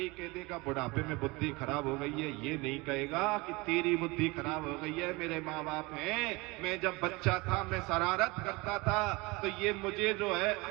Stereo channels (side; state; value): left; quieter; 24.5 dB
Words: कह देगा बुढ़ापे में बुद्धि खराब हो गई है। ये नहीं कहेगा कि तेरी बुद्धि खराब हो गई है, मेरे माँ बाप हैं, मैं जब बच्चा था मैं शरारत करता था तो ये मुझे जो है